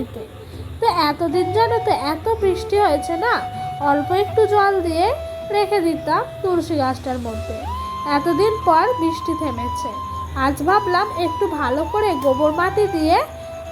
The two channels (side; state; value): both; identical; correlation 1.00